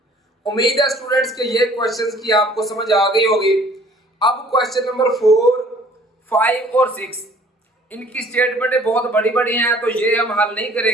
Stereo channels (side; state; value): both; normal; correlation 0.54